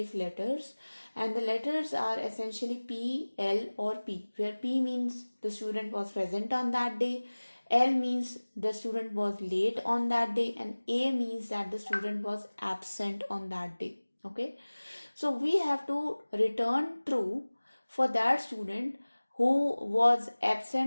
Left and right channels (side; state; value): both; inverted; correlation -1.00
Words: letters, and the letters are essentially P, L or P, where P means the student was present on that day, L means the student was late on that day, and A means that the student was absent on that day. Okay, so we have to return true for that student who was